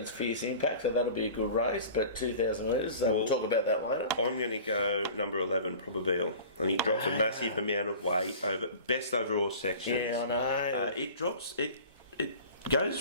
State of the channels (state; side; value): inverted; both; correlation -0.41